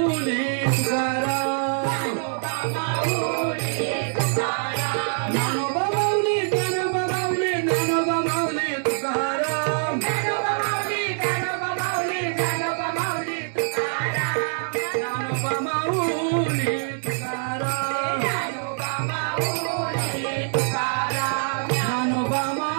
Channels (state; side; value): silent; left; digital silence